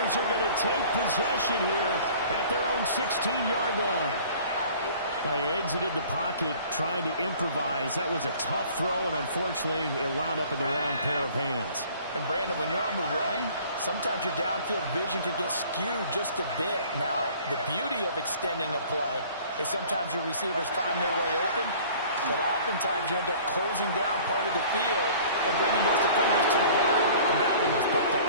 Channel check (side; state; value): both; inverted; correlation -0.50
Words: are going to take possession here at their own 16-yard line. They exited the pocket trying to improvise. That was a tough throw, and unfortunately, it wound up in the wrong pair of hands. And Brandon, when you're on the run, sometimes your downfield vision can get skewed just a bit. Now, the beauty of extending a play is sometimes your receivers find their way open, but oftentimes you end up closing down part of the field and bringing those defenders to the ground, and that one was picked